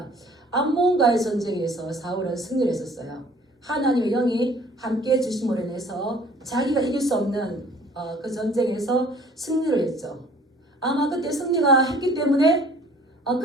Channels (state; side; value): normal; both; correlation 0.53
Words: 암몬과의 전쟁에서 사울은 승리를 했었어요. 하나님의 영이 함께 주심으로 인해서 자기가 이길 수 없는 그 전쟁에서 승리를 했죠. 아마 그때 승리가 했기 때문에